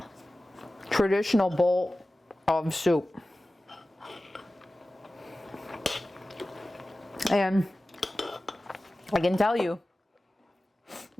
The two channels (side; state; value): both; normal; correlation 0.96